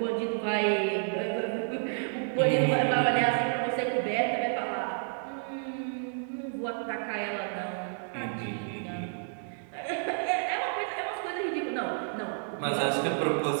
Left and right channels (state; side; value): silent; left; digital silence